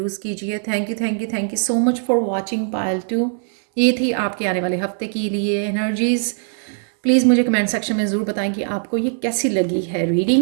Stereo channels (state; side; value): silent; left; digital silence